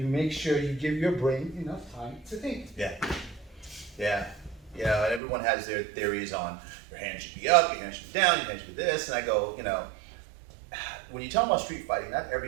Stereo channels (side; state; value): left; drops out; at 5.2 s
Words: make sure you give your brain enough time to think. Yeah. Yeah. You know, and everyone has their theories on your hand should be up, your hand should be down, your hand should be this. And I go, you know, when you talk about street fighting, not